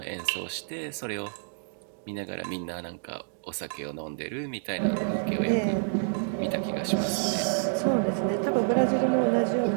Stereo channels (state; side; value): silent; left; digital silence